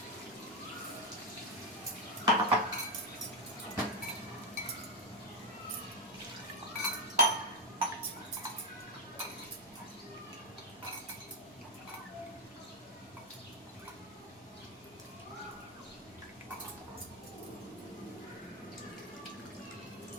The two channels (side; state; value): both; normal; correlation 0.06